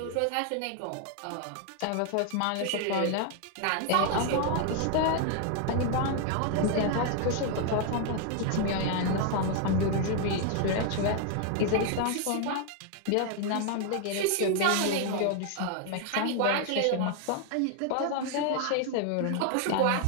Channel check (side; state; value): both; different; correlation 0.00